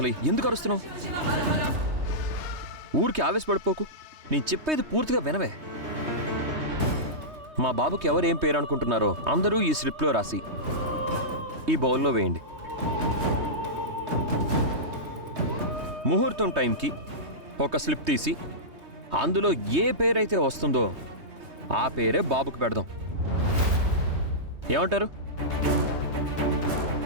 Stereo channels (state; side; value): late; left; 3.2 ms